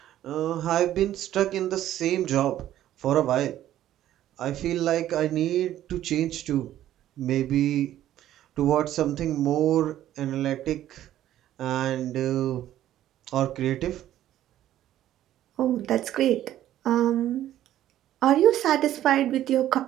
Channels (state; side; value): quieter; left; 12.6 dB